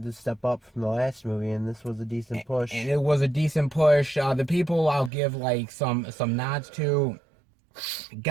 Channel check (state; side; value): drops out; left; at 5.1 s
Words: to step up from the last movie, and this was a decent push. And it was a decent push. The people I'll give like some nods to.